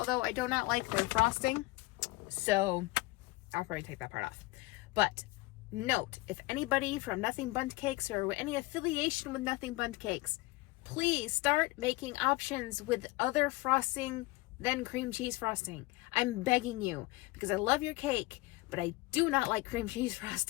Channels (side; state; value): right; quieter; 21.3 dB